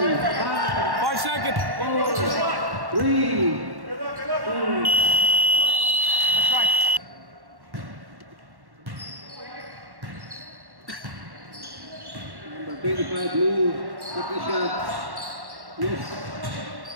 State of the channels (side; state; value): left; late; 1.1 ms